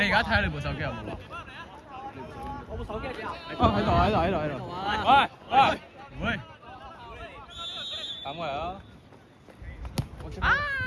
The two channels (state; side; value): identical; both; correlation 1.00